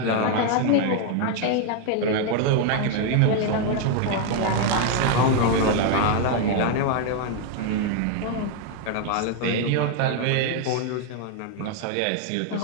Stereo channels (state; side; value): different; both; correlation 0.00